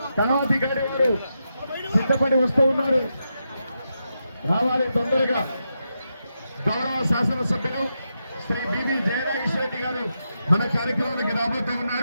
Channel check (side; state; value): both; inverted; correlation -0.86